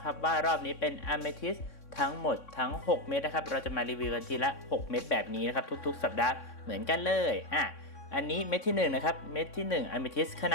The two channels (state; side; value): late; right; 3.6 ms